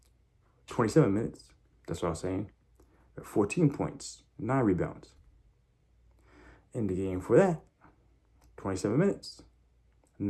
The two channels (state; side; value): identical; both; correlation 1.00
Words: 27 minutes. That's what I was saying. 14 points, 9 rebounds. In the game for that, 27 minutes,